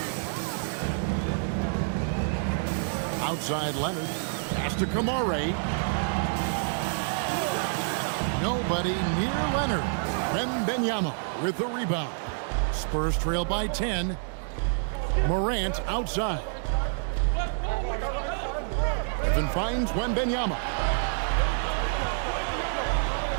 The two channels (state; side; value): silent; left; digital silence